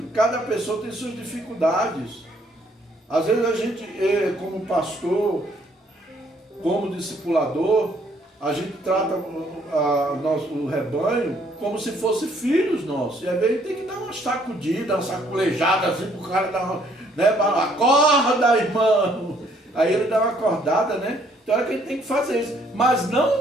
Cada pessoa tem suas dificuldades. Às vezes a gente, como pastor, como discipulador, a gente trata o rebanho como se fosse filhos nossos. E às vezes tem que dar uma sacudida, uma saculejada assim para o cara dar uma, né? Acorda, irmão! Aí ele dá uma acordada, né? Então é que a gente tem que fazer isso. Mas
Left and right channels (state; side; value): normal; both; correlation 0.65